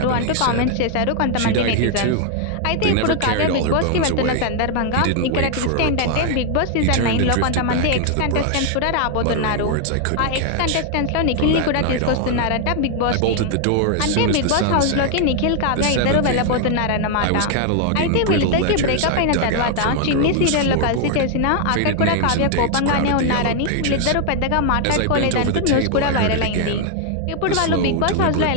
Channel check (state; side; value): different; both; correlation 0.00